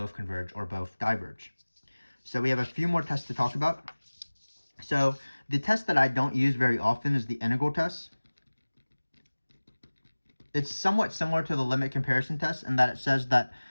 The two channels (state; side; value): inverted; both; correlation -1.00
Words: converge or both diverge. So we have a few more tests to talk about. So the test that I don't use very often is the integral test. It's somewhat similar to the limit comparison test in that it says that